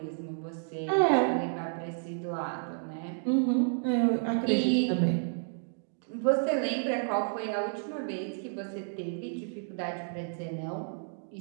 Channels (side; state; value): left; silent; digital silence